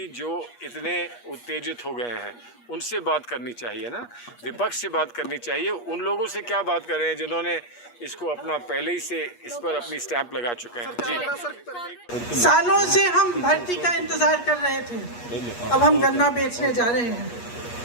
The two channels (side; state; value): right; late; 8.4 ms